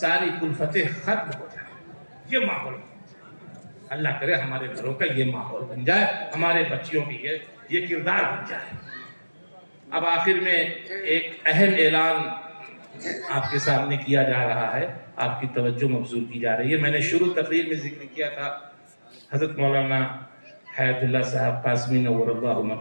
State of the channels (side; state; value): both; inverted; correlation -1.00